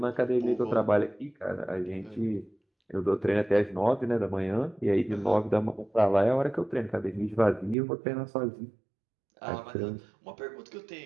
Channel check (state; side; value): drops out; left; at 7.8 s